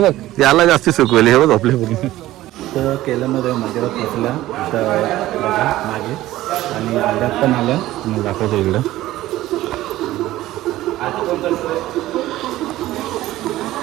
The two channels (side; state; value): left; quieter; 15.7 dB